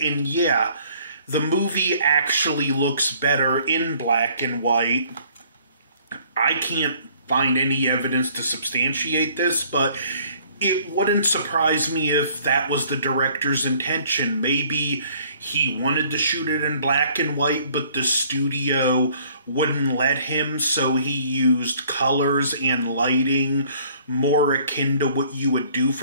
yeah, the movie actually looks better in black and white. I can't find any evidence to substantiate this, but it wouldn't surprise me if that was the director's intention. Maybe he wanted to shoot it in black and white, but the studio wouldn't let him, so he used colors and lighting more akin to what you would do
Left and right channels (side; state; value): both; inverted; correlation -0.59